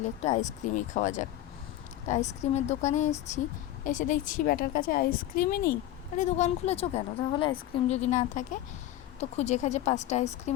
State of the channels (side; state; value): right; quieter; 13.6 dB